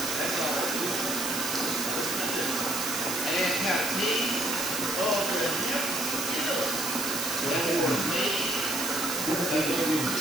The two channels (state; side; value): noise; right; hiss, 2 dB below the sound